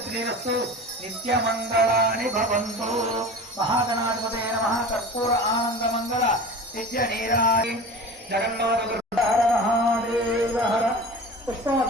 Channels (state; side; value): normal; both; correlation 0.35